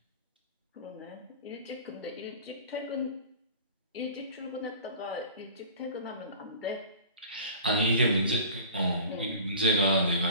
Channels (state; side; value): inverted; both; correlation -0.40